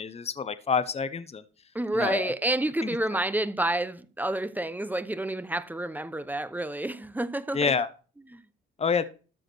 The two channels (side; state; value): both; normal; correlation 0.52